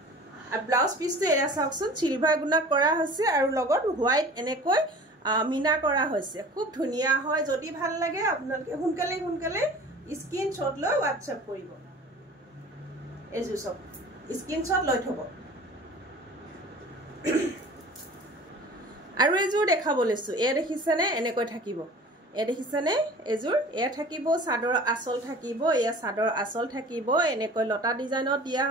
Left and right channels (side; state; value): both; normal; correlation 0.43